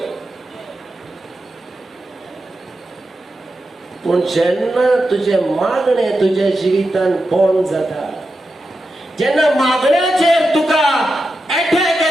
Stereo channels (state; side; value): normal; both; correlation 0.89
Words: पूण जेन्ना तुजे मागणे तुज्या जिवितांत बंद जाता, जेन्ना मागण्याचेर तुका एटॅक